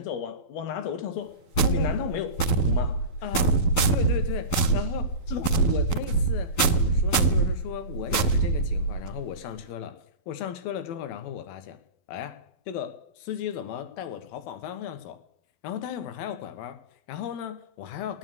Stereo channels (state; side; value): late; right; 12 ms